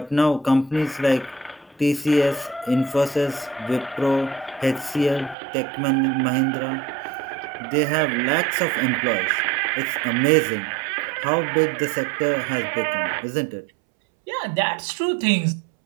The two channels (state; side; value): drops out; left; at 5.4 s